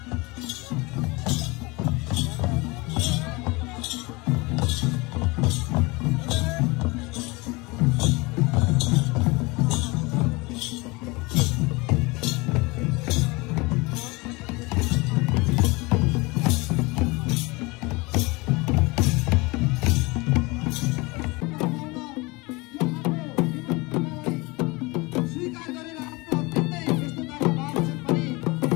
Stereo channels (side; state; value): right; quieter; 24.9 dB